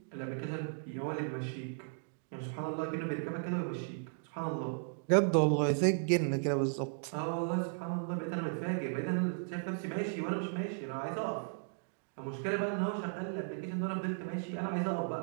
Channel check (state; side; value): silent; left; digital silence